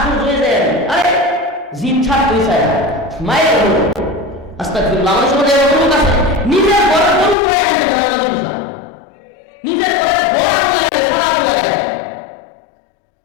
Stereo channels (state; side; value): drops out; right; at 7.4 s